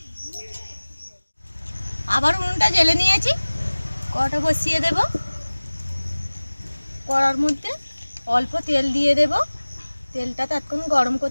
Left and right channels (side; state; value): both; inverted; correlation -1.00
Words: আবার উনুনটা জ্বেলে নিয়েছি, কড়াটা বসিয়ে দেব। কড়ার মধ্যে অল্প তেল দিয়ে দেব। তেলটা ততক্ষণ গরম